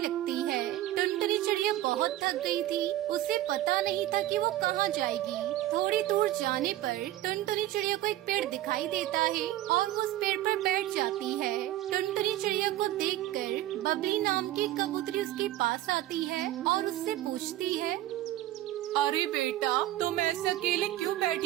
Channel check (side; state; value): left; quieter; 14.7 dB